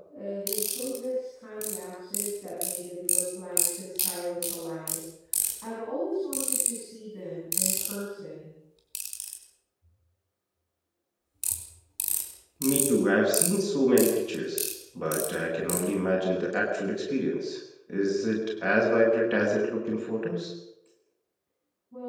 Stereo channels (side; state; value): both; identical; correlation 1.00